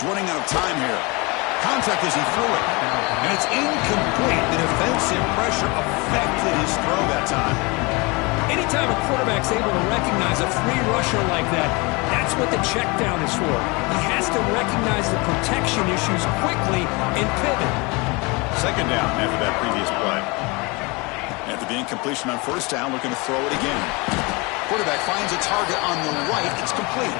running out of time here. Contact as he threw it. And it's incomplete. The defensive pressure affected his throw that time. Anytime a quarterback's able to recognize a free rusher like that, that's what the check down is for. He has to recognize the protection issues quickly and pivot. Second down after that previous play. After the incompletion on first down, looking to throw it again. Quarterback finds a target on the right. It's complete.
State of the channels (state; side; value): quieter; right; 27.1 dB